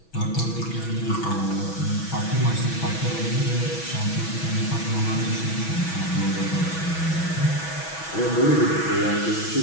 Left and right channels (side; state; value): right; late; 6.1 ms